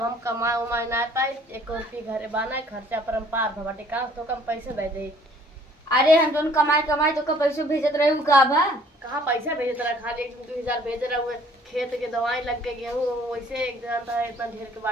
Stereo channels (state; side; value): normal; both; correlation 0.57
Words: हम कमाए उमाए ना पाए, एक रुपये घरे बाना खर्चा पर हम पार भबाटे का तो कम पैसे दे दे। अरे हम दोनों कमाए कमाए तो का पैसे भेजत रहे का बा। कहाँ पैसा भेजे तेरा, खाली 1-2 हजार भेज रहा हुए। खेत के दवाई लग गए, गेहूँ वैसे एक जानता है इतना ढेर के